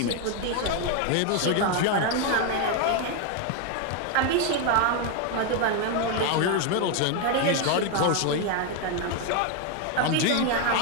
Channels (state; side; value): different; both; correlation 0.01